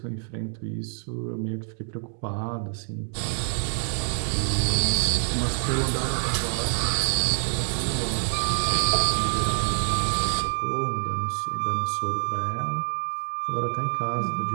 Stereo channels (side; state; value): left; silent; digital silence